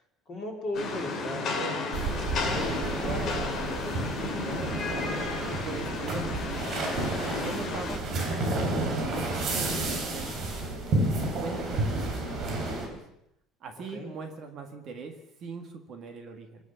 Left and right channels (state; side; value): normal; both; correlation 0.49